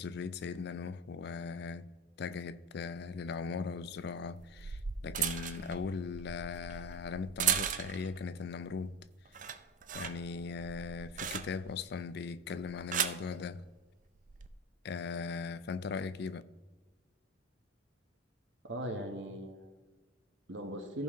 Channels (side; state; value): both; normal; correlation 0.22